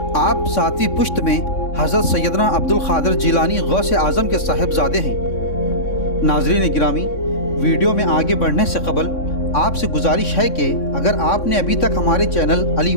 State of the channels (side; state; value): right; late; 3.6 ms